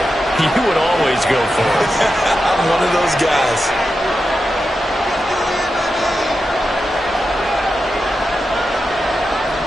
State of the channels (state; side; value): normal; both; correlation 0.89